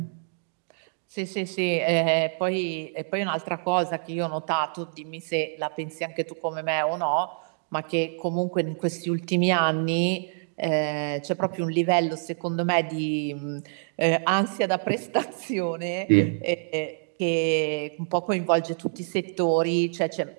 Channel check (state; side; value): silent; left; digital silence